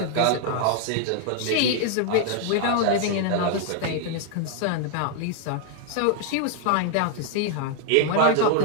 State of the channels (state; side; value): different; both; correlation 0.00